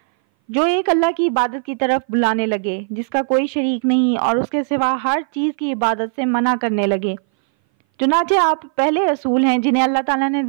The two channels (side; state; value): left; silent; 60 dB below the other